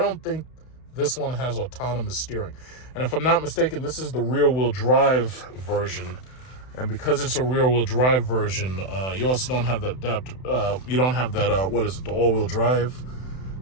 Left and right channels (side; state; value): right; late; 31 ms